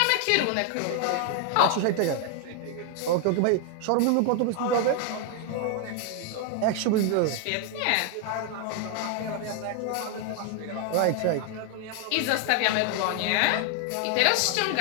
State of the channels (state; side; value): different; both; correlation 0.01